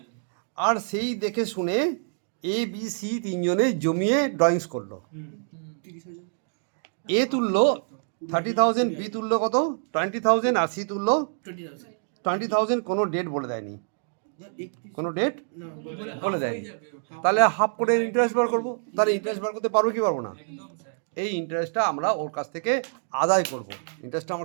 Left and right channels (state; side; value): silent; left; digital silence